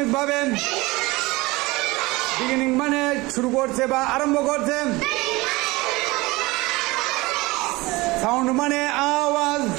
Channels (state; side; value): quieter; left; 21.9 dB